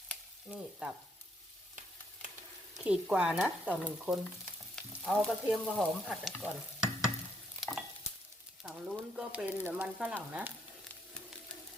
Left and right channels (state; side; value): normal; both; correlation 0.73